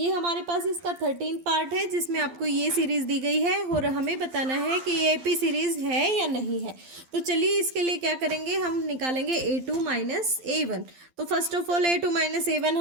हमारे पास इसका 13th पार्ट है, जिसमें आपको ये सीरीज़ दी गई है और हमें बताना है कि ये एपी सीरीज़ है या नहीं है। तो चलिए इसके लिए क्या करेंगे, हम निकालेंगे a2 माइनस a1। तो first of all a2 minus a1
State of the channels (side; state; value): left; late; 12 ms